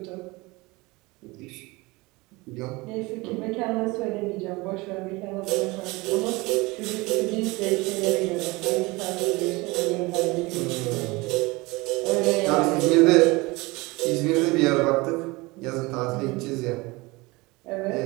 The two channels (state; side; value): quieter; left; 23.4 dB